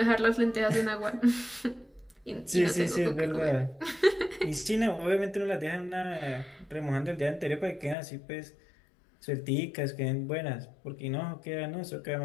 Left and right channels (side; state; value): right; drops out; at 8.0 s